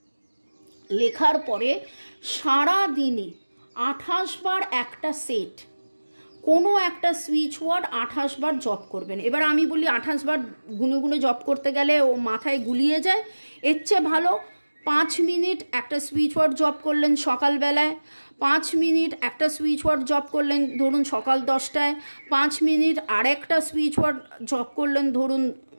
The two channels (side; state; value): both; inverted; correlation -1.00